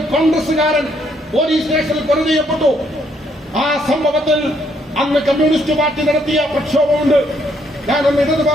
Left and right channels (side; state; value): both; normal; correlation 0.71